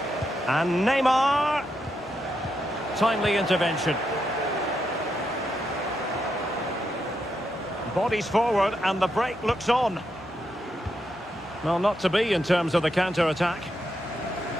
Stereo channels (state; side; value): normal; both; correlation 0.82